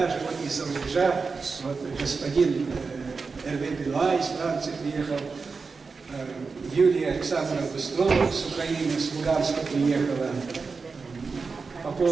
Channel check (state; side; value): quieter; left; 4.6 dB